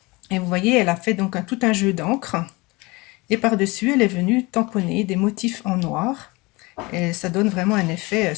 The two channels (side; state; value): right; quieter; 24.1 dB